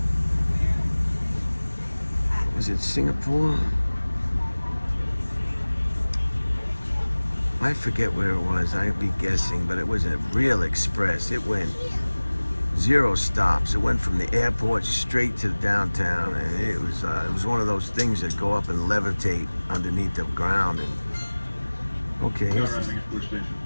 Was it Singapore? I forget where it was. I'd be guessing, but it was a real express. It went 0 stops. It went from the airport straight to downtown, and it was one of those things that go up and levitate underneath the ground. And okay, here's the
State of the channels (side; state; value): both; inverted; correlation -1.00